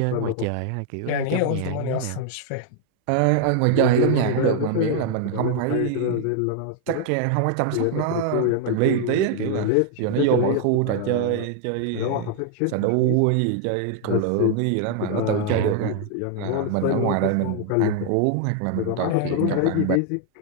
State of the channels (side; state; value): both; different; correlation 0.00